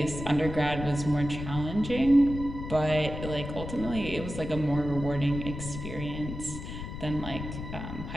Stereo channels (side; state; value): left; noise; rumble, 8 dB below the sound